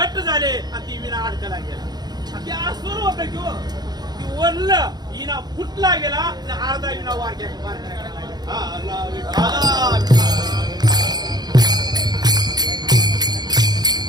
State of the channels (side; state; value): left; late; 0.20 ms